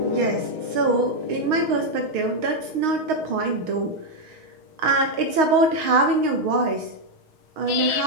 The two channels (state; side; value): late; left; 6.4 ms